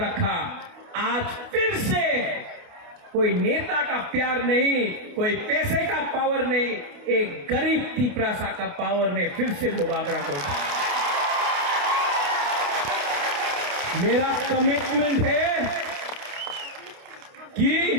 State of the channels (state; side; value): late; left; 29 ms